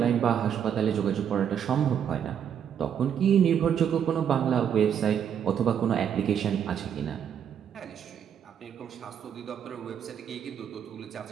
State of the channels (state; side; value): quieter; left; 8.5 dB